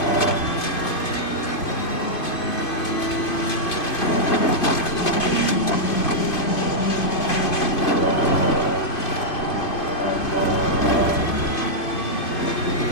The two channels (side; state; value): right; late; 2.4 ms